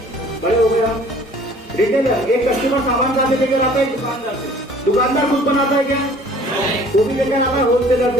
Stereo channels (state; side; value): normal; both; correlation 0.52